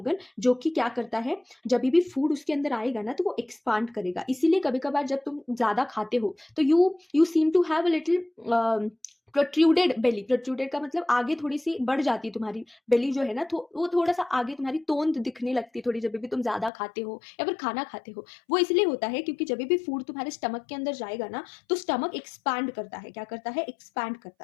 जो कि क्या करता है, जब भी फूड उसके अंदर आएगा ना तो वो एक्सपांड करेगा। इसीलिए कभी कभार जब तुम ज्यादा खाते हो तो you seem to have a little protruded belly, protruded का मतलब आगे थोड़ी सी बढ़ जाती है तुम्हारी बेली जो है ना, तो वो थोड़ा सा आगे तुम्हारी तोंद दिखने लगती है थोड़ी, जब भी तुम ज्यादा खाते हो या फिर खाना खाते हो। वो इसलिए होता है क्योंकि जब भी फूड तुम्हारे स्टमक के अंदर जाएगा ना तो स्टमक एक्सपैंड करता है, क्या करता है, एक्सपैंड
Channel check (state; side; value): drops out; right; at 16.7 s